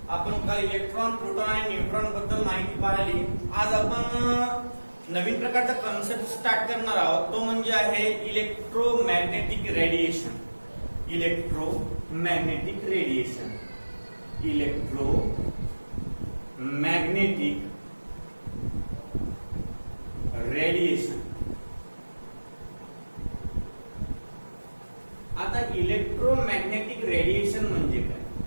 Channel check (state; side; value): inverted; both; correlation -1.00